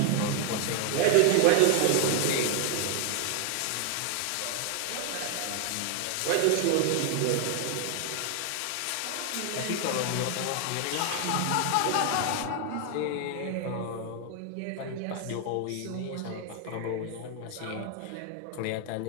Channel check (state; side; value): different; both; correlation 0.00